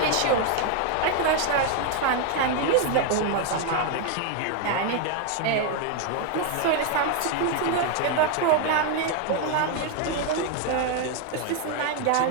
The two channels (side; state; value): both; different; correlation 0.01